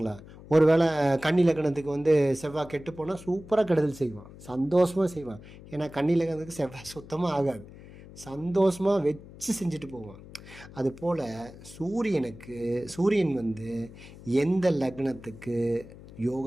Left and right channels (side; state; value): left; noise; hum, 18 dB below the sound